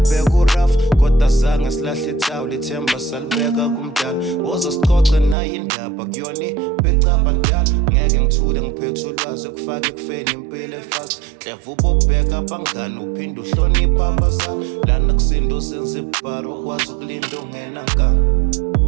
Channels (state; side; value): drops out; left; at 5.4 s